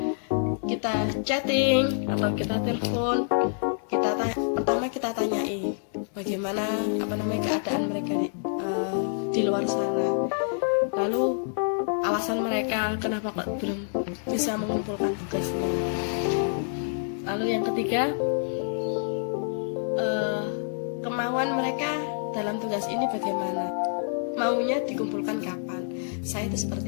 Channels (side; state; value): right; silent; digital silence